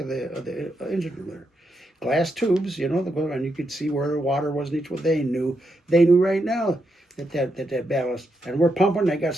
the engine room there. Glass tubes, and you could see where the water was in each one. They knew right now that ballast, and we're pumping. They got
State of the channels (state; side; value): normal; both; correlation 0.82